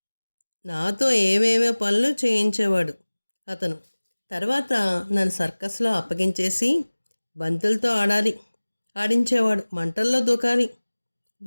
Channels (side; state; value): both; inverted; correlation -1.00